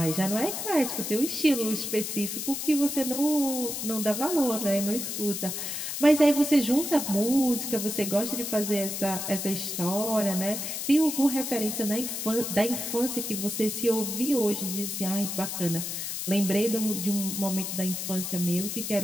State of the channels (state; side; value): noise; left; hiss, 4 dB below the sound